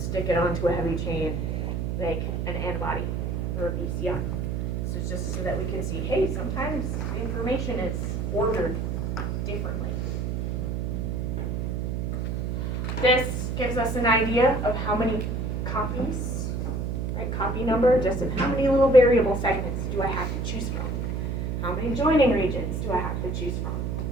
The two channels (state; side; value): noise; right; hum, 1 dB below the sound